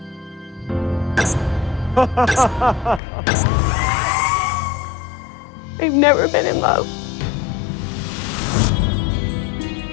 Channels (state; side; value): drops out; right; at 3.0 s